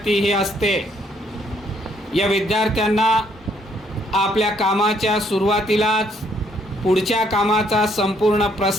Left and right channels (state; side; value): normal; both; correlation 0.69